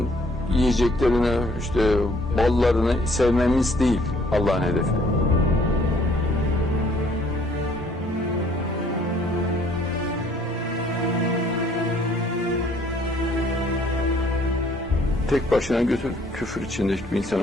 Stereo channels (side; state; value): both; normal; correlation 0.61